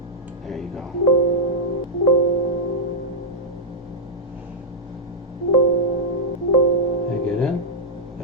There you go. Did I get in?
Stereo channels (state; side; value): normal; both; correlation -0.09